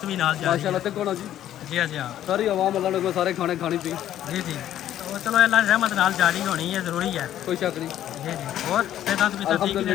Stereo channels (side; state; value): right; quieter; 11.9 dB